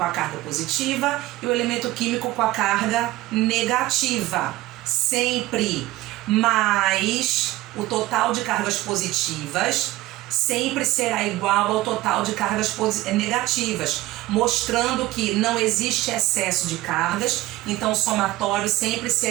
a carga positiva e o elemento químico com a carga negativa, sempre. Mas o total de cargas positivas sempre será igual ao total de cargas negativas, mostrando que não existe excesso de cargas, então o somatório sempre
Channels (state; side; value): quieter; left; 17.7 dB